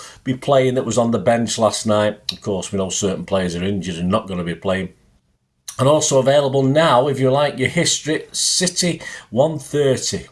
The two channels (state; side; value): identical; both; correlation 1.00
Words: be playing that was on the bench last night. Of course, we know certain players are injured and not going to be playing. And also available now, if you like your history, City 130,